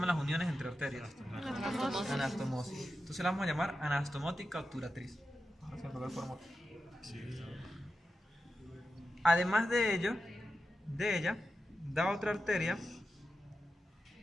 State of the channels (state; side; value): normal; both; correlation 0.91